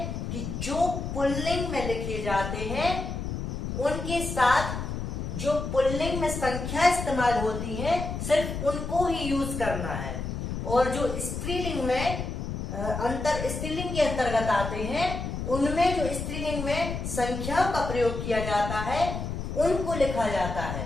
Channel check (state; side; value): noise; left; rumble, 5 dB below the sound